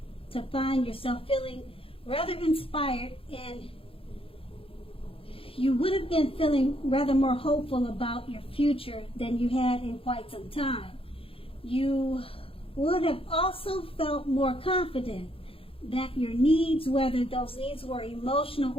to find yourself feeling rather inspired, and you would have been feeling rather more hopeful about your future than you had in quite some time. You would have also felt more confident that your needs, whether those needs were emotional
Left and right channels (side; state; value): right; late; 0.27 ms